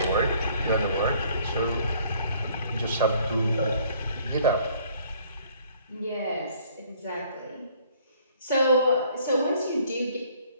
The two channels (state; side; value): inverted; both; correlation -0.60